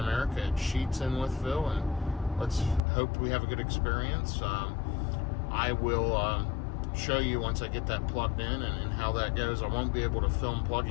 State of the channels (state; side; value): drops out; right; at 2.8 s